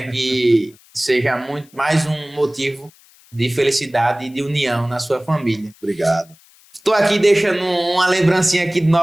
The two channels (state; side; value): noise; left; hiss, 28 dB below the sound